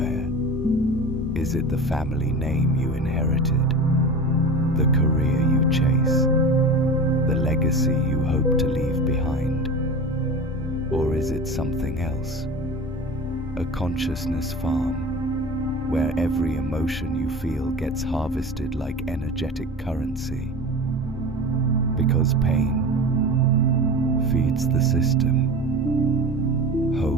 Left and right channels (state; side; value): noise; left; rumble, 16 dB below the sound